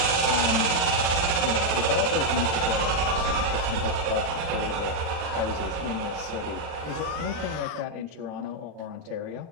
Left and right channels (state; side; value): late; left; 40 ms